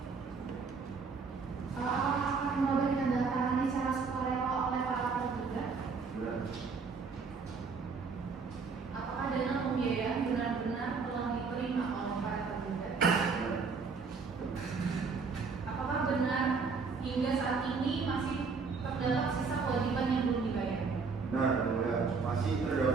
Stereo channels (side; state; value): left; quieter; 4.9 dB